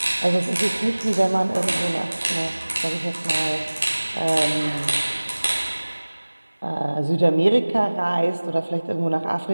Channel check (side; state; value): both; inverted; correlation -1.00